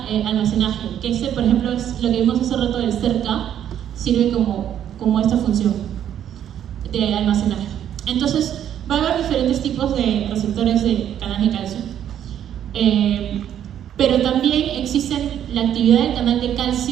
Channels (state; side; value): quieter; left; 10.2 dB